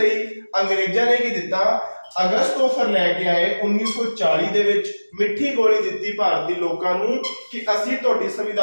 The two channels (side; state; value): both; inverted; correlation -1.00